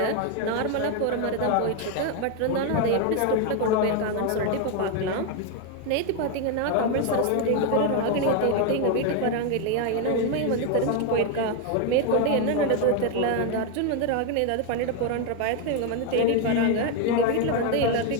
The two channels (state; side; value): different; both; correlation 0.01